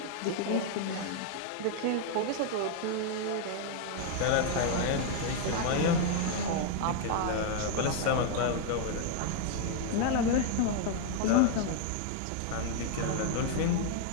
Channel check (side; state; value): both; different; correlation 0.00